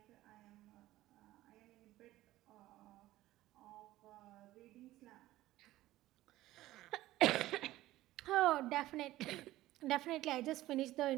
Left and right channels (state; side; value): quieter; left; 16.0 dB